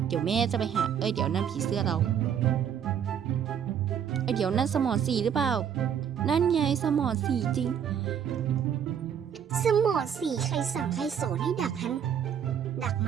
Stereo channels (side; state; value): left; quieter; 8.4 dB